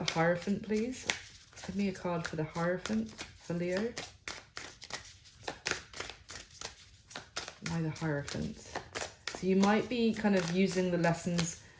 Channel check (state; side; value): identical; both; correlation 1.00